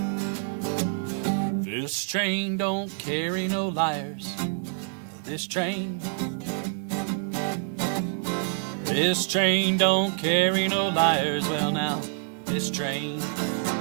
This train don't carry no liars. This train don't carry no liars. Well now, this train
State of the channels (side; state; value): left; silent; digital silence